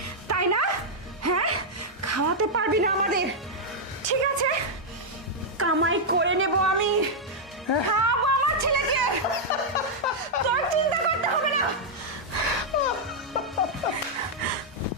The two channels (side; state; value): both; normal; correlation -0.04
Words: তাই না? হ্যাঁ, খাওয়াতে পারবি না আমাদের। ঠিক আছে, কামাই করে নেব আমি, খাওয়াবো আমার ছেলেকে, তোর চিন্তা করতে হবে না।